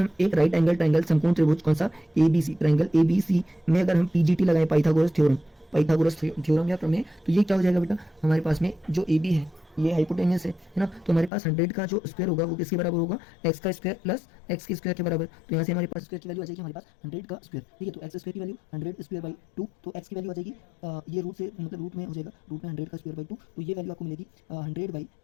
एक राइट एंगल ट्रायंगल समकोण त्रिभुज कौन सा, ABC, ट्रायंगल ABC में अगर हम PGT लगाएं, पाइथागोरस थ्योरम या प्रमेय, तो ये क्या हो जाएगा बेटा, हमारे पास में जो AB है ये हाइपोटेन्यूस है ना, तो हमारे पास 100 का जो स्क्वायर होगा वो किसके बराबर होगा, x का स्क्वायर प्लस x के स्क्वायर के बराबर। तो यहाँ से हमारे पास स्क्वायर की वैल्यू आ जाएगी हमारे पास 100 का स्क्वायर। ठीक है, तो x स्क्वायर की वैल्यू 100 स्क्वायर बाई 2, तो x की वैल्यू आ जाएगी ये रूट से, मतलब रूट में हो जाएगा, रूट में 100 का स्क्वायर बाई 2, तो ये वैल्यू आपको मिलेगी 100 बाई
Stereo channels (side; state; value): right; drops out; at 11.3 s